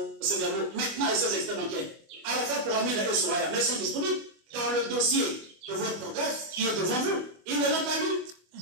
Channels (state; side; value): late; left; 25 ms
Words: maintenant et ces extraits d'enquête, à la fois pour Amida et Souraya, mais ils sont disponibles dans le dossier de votre greffe qui est devant vous. Il ne l'a pas lu.